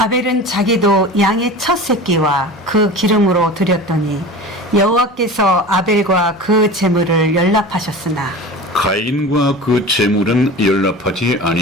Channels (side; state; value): both; normal; correlation 0.34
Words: 자기도 양의 첫 새끼와 그 기름으로 드렸더니 여호와께서 아벨과 그 제물을 연락하셨으나 가인과 그 제물은 연락하지